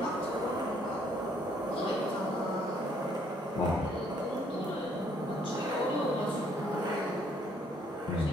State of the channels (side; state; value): both; normal; correlation 0.66